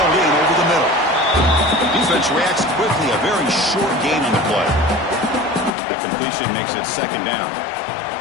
in over the middle. Defense reacts quickly. A very short gain on the play. That completion makes it second down.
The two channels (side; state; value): right; drops out; at 5.7 s